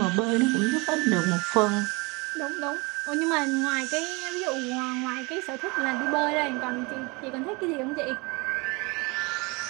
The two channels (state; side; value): quieter; left; 27.2 dB